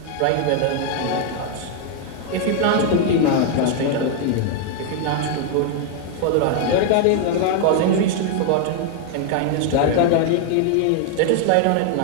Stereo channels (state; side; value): different; both; correlation 0.00